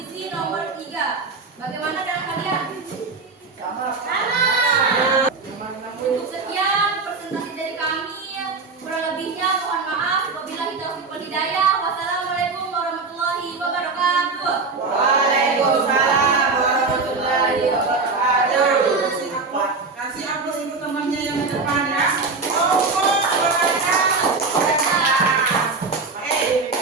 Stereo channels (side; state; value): left; quieter; 4.2 dB